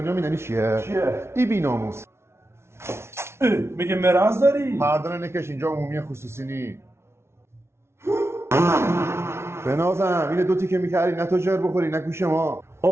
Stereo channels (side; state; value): left; late; 0.13 ms